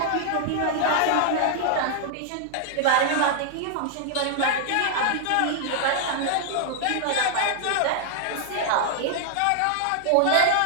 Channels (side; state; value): both; different; correlation 0.00